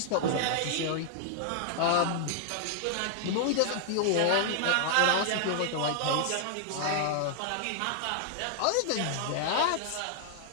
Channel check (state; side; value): different; both; correlation -0.01